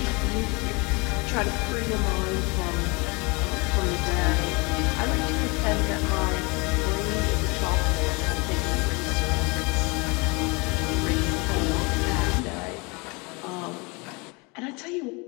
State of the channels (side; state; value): right; quieter; 28.3 dB